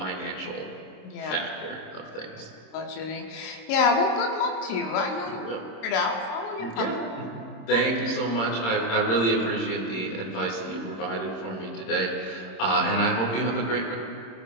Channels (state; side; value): late; right; 26 ms